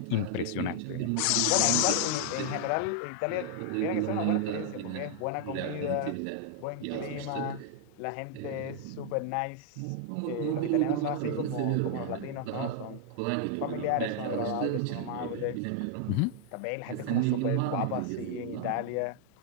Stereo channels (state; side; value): different; both; correlation 0.00